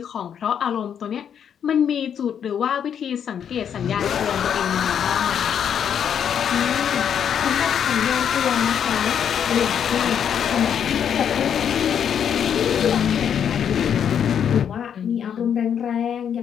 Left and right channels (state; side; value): quieter; right; 8.4 dB